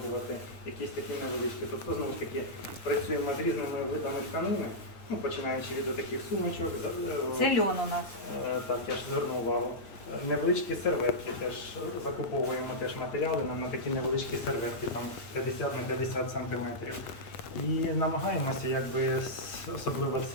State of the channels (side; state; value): right; late; 9.0 ms